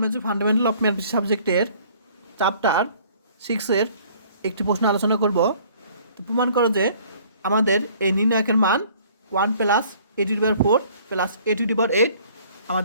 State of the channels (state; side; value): inverted; both; correlation -0.55